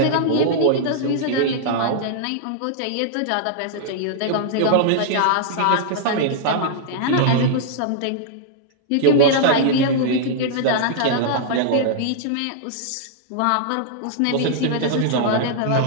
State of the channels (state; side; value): different; both; correlation -0.01